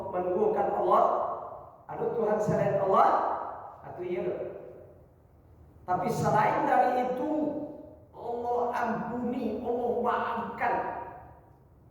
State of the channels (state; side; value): identical; both; correlation 1.00